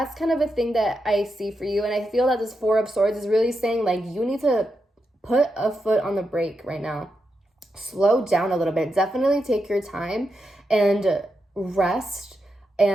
kind of a thing that I see for you. And I feel that this Four of Swords is really saying like you need to put a foot on the brake right now. Slow down a little bit. Definitely take your time and rest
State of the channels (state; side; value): normal; both; correlation 0.85